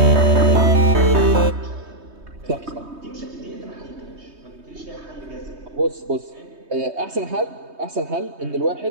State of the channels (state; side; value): late; left; 3.2 ms